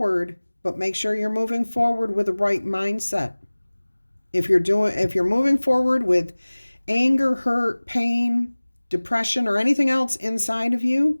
but make sure you're moving forward with the right mindset. If you're moving forward with anger, hurt, pain, depression, or anything else inside of you,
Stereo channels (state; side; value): inverted; both; correlation -1.00